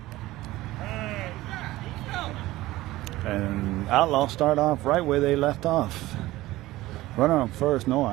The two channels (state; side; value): quieter; left; 17.4 dB